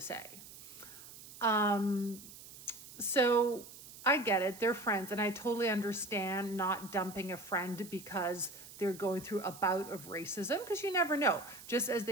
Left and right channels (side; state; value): right; noise; hiss, 16 dB below the sound